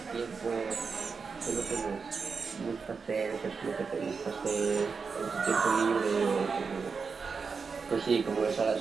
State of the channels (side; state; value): left; quieter; 5.2 dB